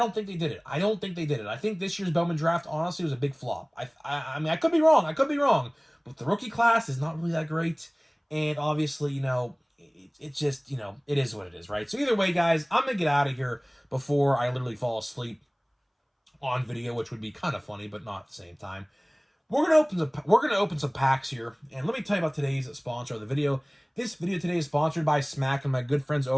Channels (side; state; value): both; identical; correlation 1.00